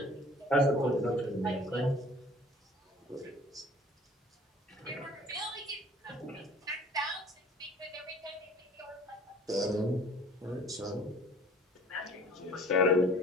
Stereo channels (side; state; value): both; normal; correlation 0.49